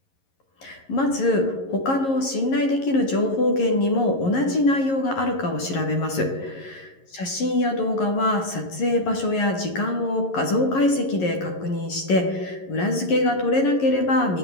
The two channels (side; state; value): right; late; 11 ms